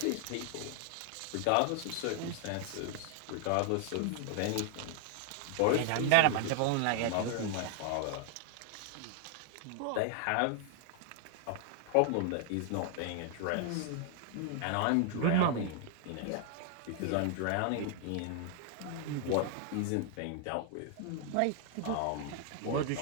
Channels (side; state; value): both; different; correlation 0.00